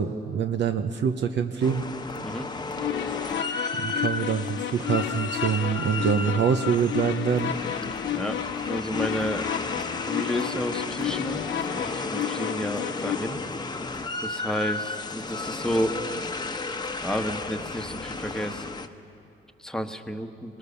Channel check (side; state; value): both; normal; correlation 0.41